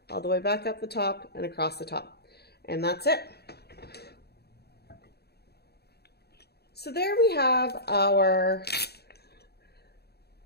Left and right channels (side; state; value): right; late; 0.47 ms